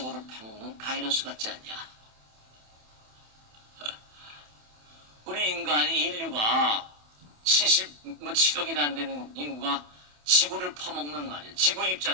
파먹는 바이러스 같지 않냐. 우리 인류가 77억이나 안 되는 인구가 지구를 퍼먹는 말이에요. 지구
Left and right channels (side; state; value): left; late; 27 ms